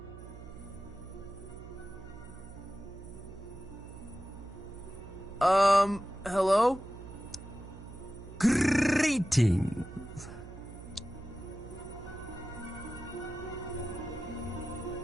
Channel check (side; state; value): right; noise; hum, 14 dB below the sound